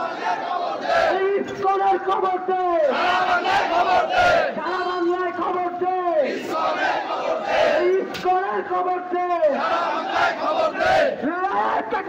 ইসকনের খবর দে সারা বাংলায় খবর দে ইসকনের খবর দে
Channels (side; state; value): both; identical; correlation 1.00